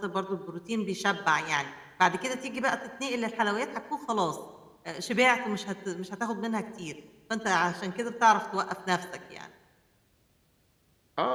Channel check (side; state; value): both; identical; correlation 1.00